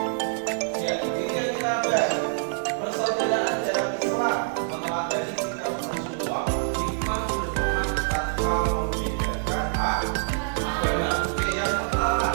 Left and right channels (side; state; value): left; silent; digital silence